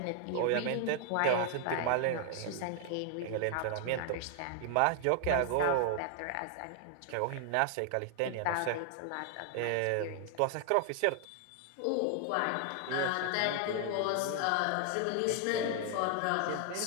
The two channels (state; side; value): different; both; correlation 0.00